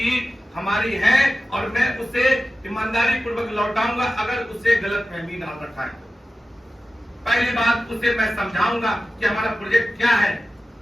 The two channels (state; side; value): normal; both; correlation 0.94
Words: हमारी है, और मैं उसे ईमानदारी पूर्वक लौटाऊंगा अगर उसे गलतफहमी डाल रखा है। पहली बात, उसे मैं समझाऊंगा कि हमारा प्रोजेक्ट क्या है,